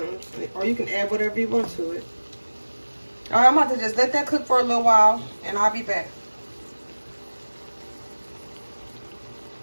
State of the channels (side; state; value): both; inverted; correlation -1.00